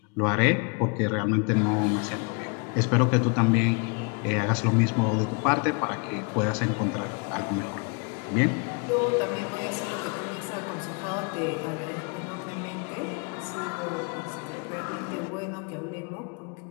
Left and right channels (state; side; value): quieter; right; 35.3 dB